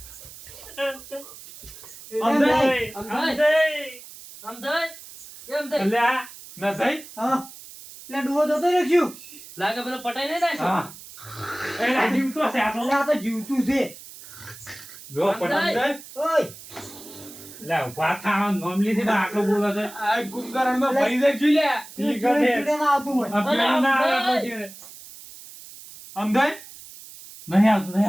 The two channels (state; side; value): noise; right; hiss, 17 dB below the sound